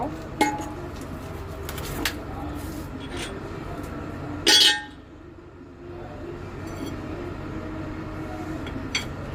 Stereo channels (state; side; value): identical; both; correlation 1.00